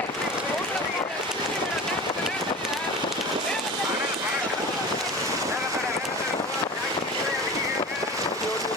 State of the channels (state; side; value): normal; both; correlation 0.34